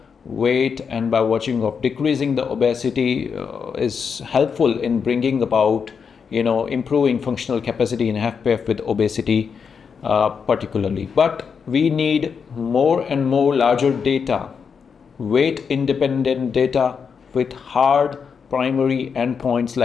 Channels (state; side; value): quieter; right; 6.2 dB